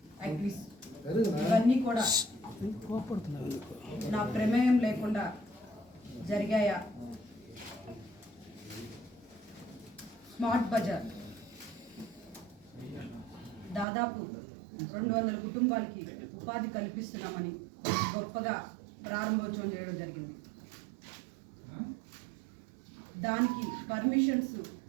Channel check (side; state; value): left; drops out; at 13.9 s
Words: యాక్టివిటీస్ ఇవన్నీ కూడా నా ప్రమేయం లేకుండా జరిగాయా? స్మార్ట్ బజార్ దాదాపు 200 కుటుంబాలకి ఉపాధి కల్పిస్తున్నామని గొప్పగా ప్రారంభోత్సవం చేయడం జరిగింది. దానికి పర్మిషన్స్